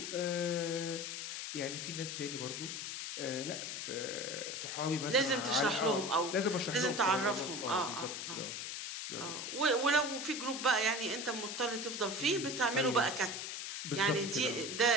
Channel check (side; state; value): left; noise; hiss, 5 dB below the sound